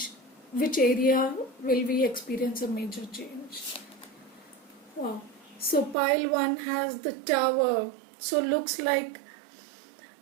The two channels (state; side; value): drops out; left; at 6.0 s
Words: Which area will we experience a major change? Wow. So pile 1 has the tower. So looks like